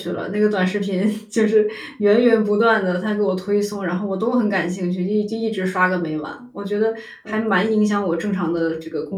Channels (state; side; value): identical; both; correlation 1.00